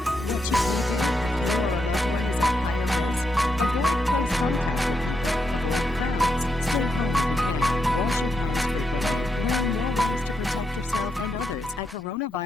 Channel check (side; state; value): both; normal; correlation 0.82